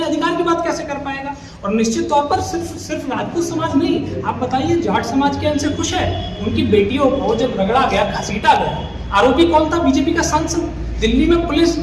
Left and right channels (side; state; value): both; identical; correlation 1.00